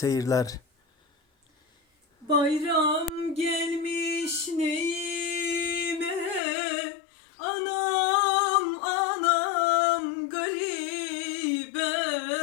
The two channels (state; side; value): drops out; right; at 6.4 s